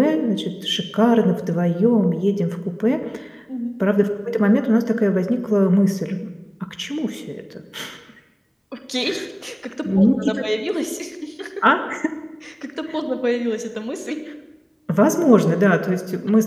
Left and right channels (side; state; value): both; identical; correlation 1.00